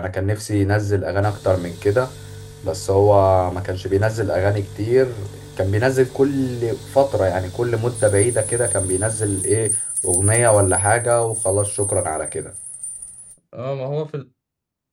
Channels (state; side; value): identical; both; correlation 1.00